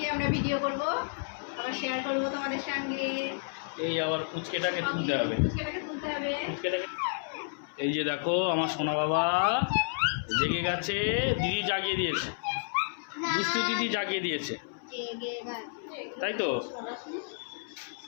আমরা ভিডিও করব, আবার শেয়ার করব তোমাদের সঙ্গে। এই আবার পুচকেটাকে তুলতে হবে, পুচকেটাকে তুলতে হবে। এই যে দেখো আমার সোনা বাবা জেগে গেছে, দিদি জাগিয়ে দিয়েছে, দুষ্টু দিদি জাগিয়ে দিয়েছে, তাই তো?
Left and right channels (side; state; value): right; silent; 57 dB below the other